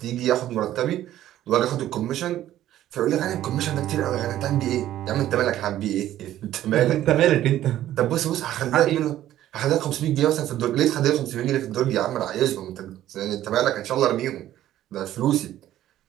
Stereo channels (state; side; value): quieter; left; 13.0 dB